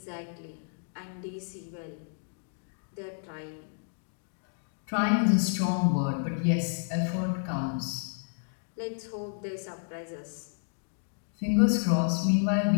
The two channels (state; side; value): silent; right; digital silence